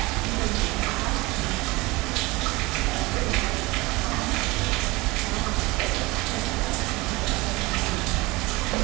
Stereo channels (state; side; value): quieter; left; 22.6 dB